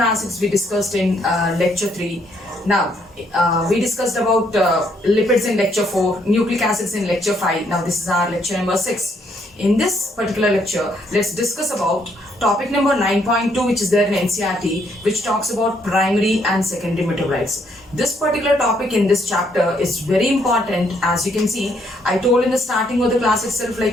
we discussed in Lecture 3. Now, we discussed about lipids in Lecture 4, nucleic acids in Lecture 5. Now, this is our lecture number 6. In this particular lecture, let's discuss about topic number 9.2, which is there in NCERT, which talks about primary and secondary metabolites. This particular topic in this chapter is very important. As you can see, I told in the starting of the class itself,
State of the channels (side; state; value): both; normal; correlation 0.71